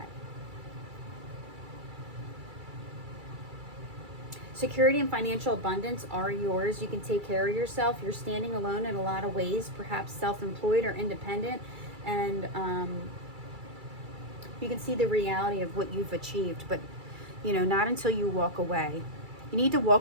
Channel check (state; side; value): late; left; 2.3 ms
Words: Security and financial abundance are yours. You can take care of yourself. You're standing alone in a lot of ways, perhaps self-employed or independent. And you can see the reality of what you've achieved. But, you know, not until you walk away. You need to